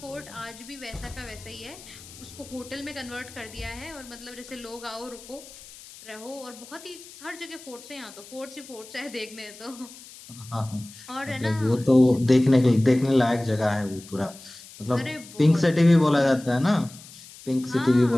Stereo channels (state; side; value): noise; left; hiss, 18 dB below the sound